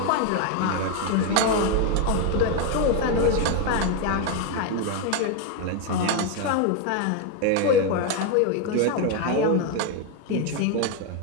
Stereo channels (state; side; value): different; both; correlation 0.02